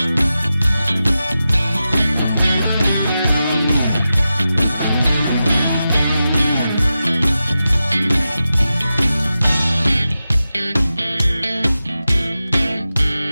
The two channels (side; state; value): both; inverted; correlation -0.92